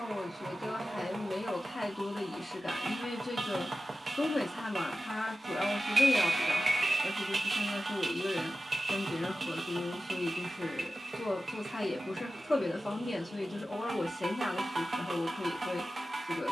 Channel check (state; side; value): normal; both; correlation 0.94